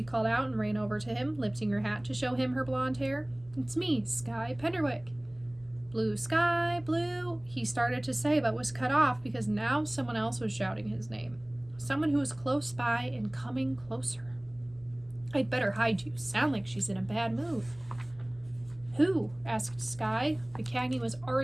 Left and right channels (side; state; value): left; noise; rumble, 27 dB below the sound